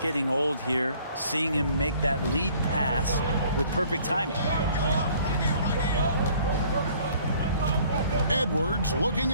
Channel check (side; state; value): both; inverted; correlation -0.56